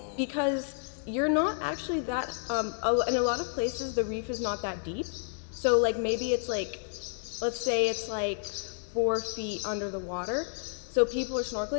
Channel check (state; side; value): silent; right; 57 dB below the other